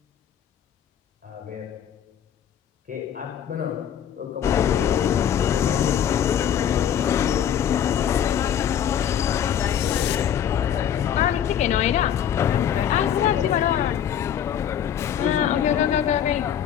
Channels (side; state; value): right; quieter; 9.4 dB